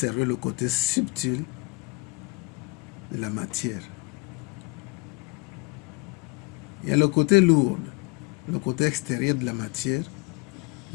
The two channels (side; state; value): right; quieter; 25.9 dB